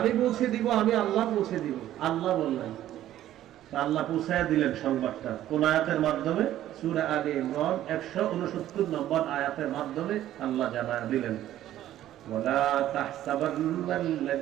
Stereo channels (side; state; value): left; quieter; 12.9 dB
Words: পৌঁছে দিব, আমি আল্লাহ পৌঁছে দিব। আল্লাহ বললেন, আল্লাহ পৌঁছায়া দিলেন সংবাদটা কোন আয়াতের মাধ্যমে? সূরা আলে ইমরান 169 নম্বর আয়াতের মাধ্যমে আল্লাহ জানায়া দিলেন, ওয়ালা